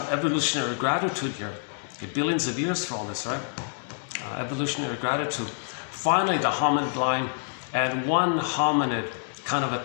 evolutionary gratitude here. Okay, billions of years for all this, right? Evolutionary gratitude. Finally, the hominid line, and one hominid kind of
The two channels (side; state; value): right; silent; digital silence